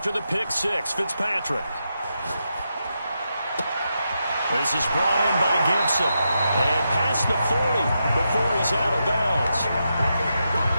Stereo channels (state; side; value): inverted; both; correlation -0.86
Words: the pick 6, Fitzpatrick. This is brought in by Gibson. And past the 40 before he's out of bounds.